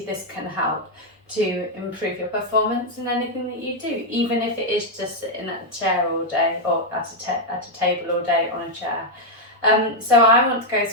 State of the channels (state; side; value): normal; both; correlation 0.00